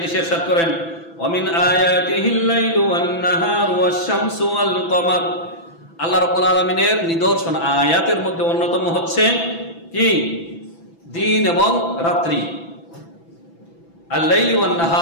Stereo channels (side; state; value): right; late; 6.0 ms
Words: ইরশাদ করেন, ওয়ামিন আয়াতিহিল লাইলু ওয়ান নাহারু ওয়াশ শামসু ওয়াল কমার। আল্লাহ রাব্বুল আলামিনের নিদর্শন, আয়াতের মধ্যে অন্যতম হচ্ছে কি দিন এবং রাত্রি। আল-লাইলি ওয়ান